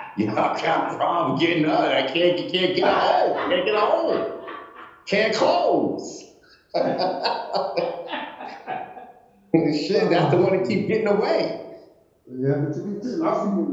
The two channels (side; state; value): both; identical; correlation 1.00